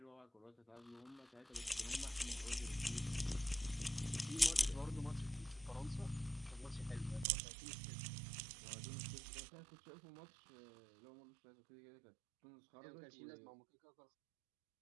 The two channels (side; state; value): left; drops out; at 7.2 s